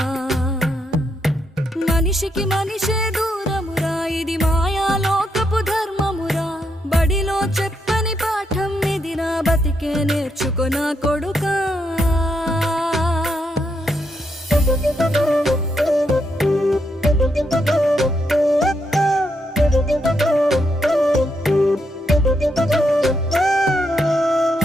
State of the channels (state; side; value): normal; both; correlation 0.79